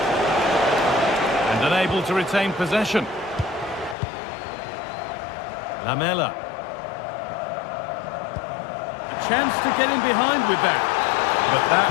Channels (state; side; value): drops out; right; at 4.0 s